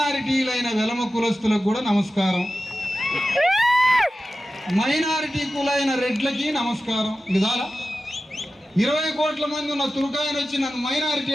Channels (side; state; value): both; normal; correlation 0.94